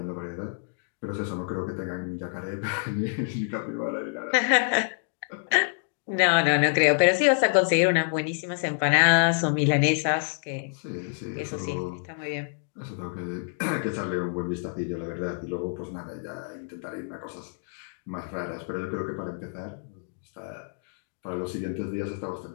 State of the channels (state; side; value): silent; right; 60 dB below the other